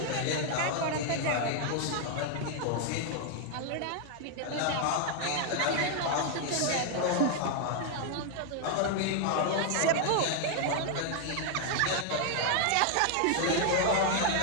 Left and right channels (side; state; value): both; different; correlation 0.00